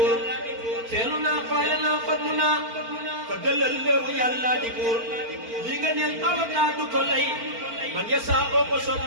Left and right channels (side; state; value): left; late; 4.4 ms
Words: feelu naa faale naa fallu naa fa dalal léewu yàlla di buur li nga neel avocat du ko lay man ya saa ko soob